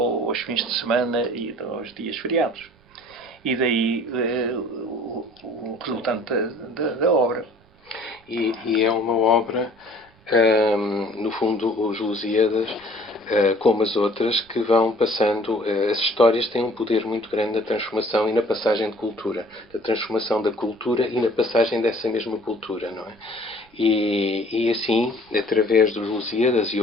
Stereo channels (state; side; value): noise; right; rumble, 30 dB below the sound